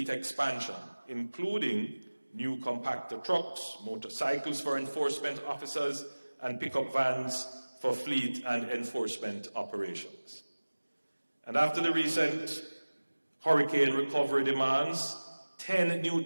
expansion, including new compactor trucks, motorcycles for enforcement officers, and pickup vans for fleet and enforcement operations. And after the recent hurricane recovery demands, 10 new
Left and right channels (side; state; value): both; inverted; correlation -1.00